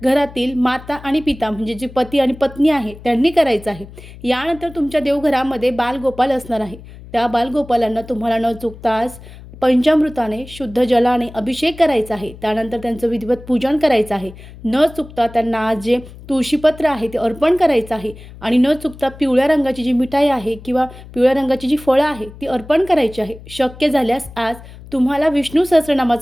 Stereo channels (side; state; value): left; noise; hum, 17 dB below the sound